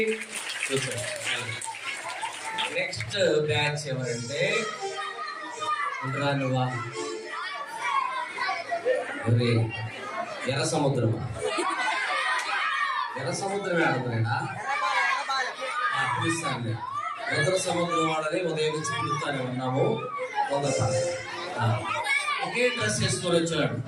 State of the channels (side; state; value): both; identical; correlation 1.00